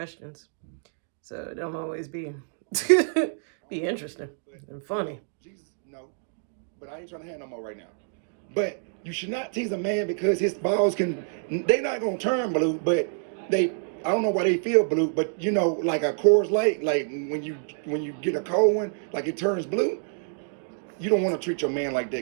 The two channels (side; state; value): left; silent; digital silence